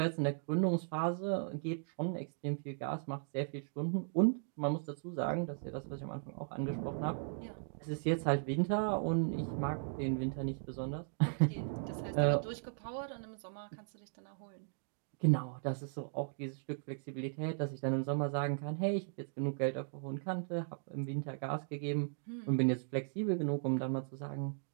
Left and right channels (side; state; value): left; silent; digital silence